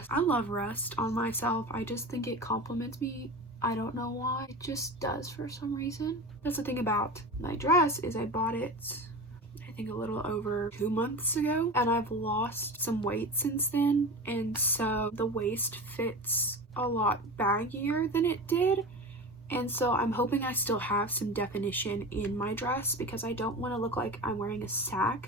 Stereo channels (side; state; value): both; normal; correlation 0.29